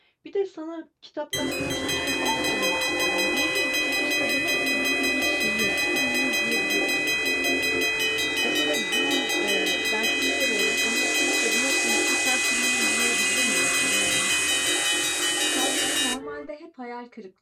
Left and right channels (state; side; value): identical; both; correlation 1.00